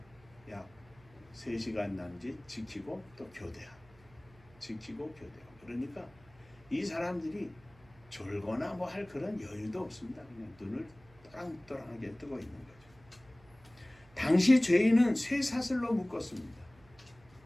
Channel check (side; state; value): right; noise; hum, 26 dB below the sound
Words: 약 3시간 남짓 지키고 또 교대하고 지키고 교대하고. 그러니까 이 사람들이 졸거나 뭐 할 그런 여유도 없습니다. 그냥 눈을 또랑또랑하게 뜨고 있는 거죠. 당시 죄인은 쇠사슬로 묶었습니다.